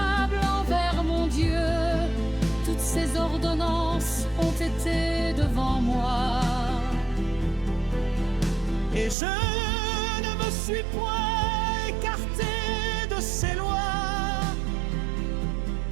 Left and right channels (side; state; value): left; drops out; at 9.2 s